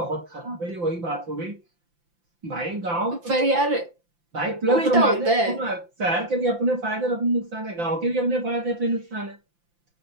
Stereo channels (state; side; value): late; left; 5.8 ms